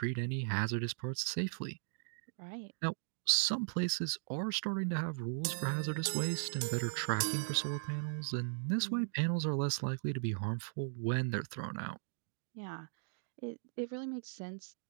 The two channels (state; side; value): silent; left; digital silence